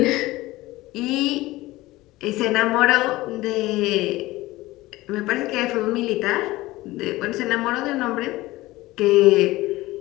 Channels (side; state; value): right; quieter; 18.6 dB